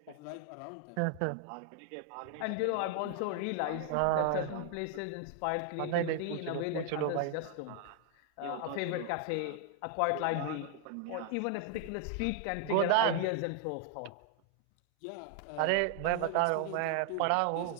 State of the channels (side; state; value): both; different; correlation 0.00